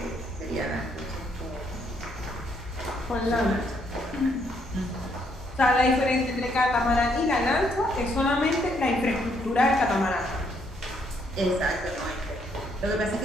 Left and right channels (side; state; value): both; normal; correlation 0.71